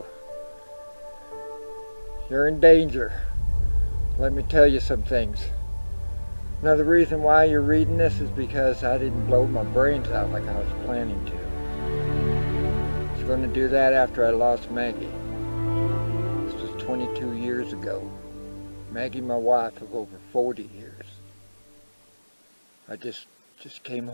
You're in danger. Let me tell you some things. Another reason why you're reading this is because I didn't blow my brains out like I was planning to. I was going to do that after I lost Maggie. This was 22 years ago. Maggie, my wife of over 40 years. I just came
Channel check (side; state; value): both; inverted; correlation -1.00